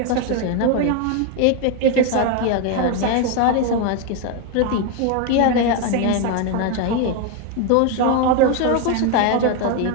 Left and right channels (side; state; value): both; different; correlation 0.01